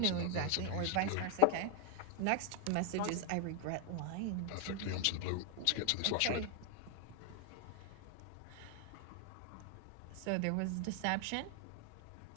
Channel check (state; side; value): different; both; correlation 0.00